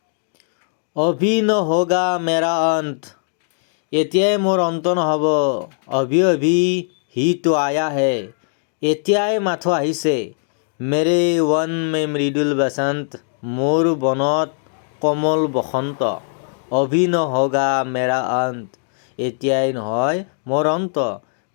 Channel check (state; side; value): silent; right; digital silence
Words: অভি নহোগা মেৰা অন্ত, এতিয়াই মোৰ অন্ত নহ'ব। অভি অভি হি তো আয়া হে, এতিয়াই মাথো আহিছে। মেৰে ৱন মে মৃদুল বসন্ত, মোৰ বনত কোমল বসন্ত। অভি নহোগা মেৰা অন্ত, এতিয়াই নহয় মোৰ অন্ত।